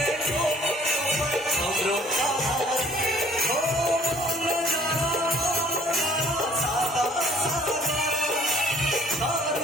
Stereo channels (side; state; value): both; normal; correlation 0.56